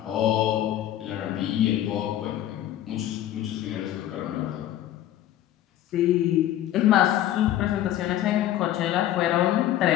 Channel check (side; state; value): right; quieter; 12.6 dB